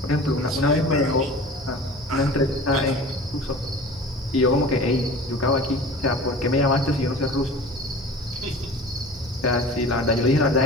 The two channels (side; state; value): both; normal; correlation 0.39